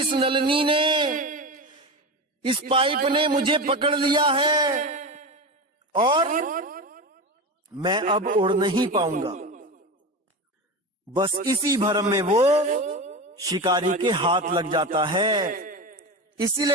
नलनी ने, इस पाइप ने मुझे पकड़ लिया है और मैं अब उड़ नहीं पाऊंगा। बस इसी भ्रम में वो शिकारी के हाथ लग जाता है।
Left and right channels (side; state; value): both; normal; correlation 0.23